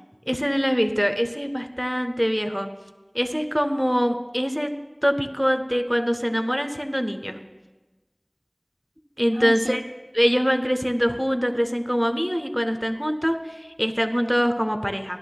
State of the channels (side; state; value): both; identical; correlation 1.00